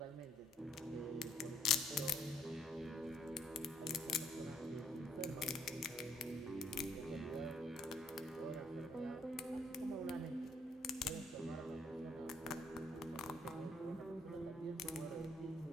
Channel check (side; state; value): both; normal; correlation 0.66